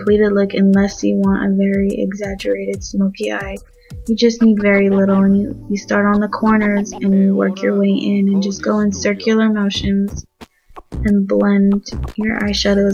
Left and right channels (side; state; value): both; identical; correlation 1.00